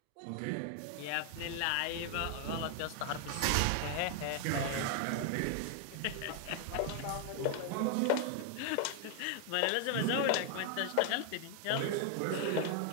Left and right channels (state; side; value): different; both; correlation 0.00